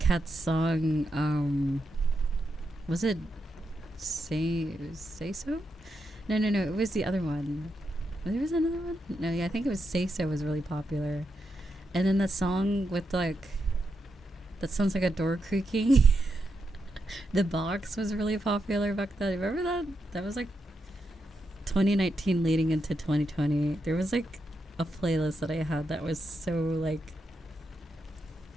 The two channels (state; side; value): normal; both; correlation 0.84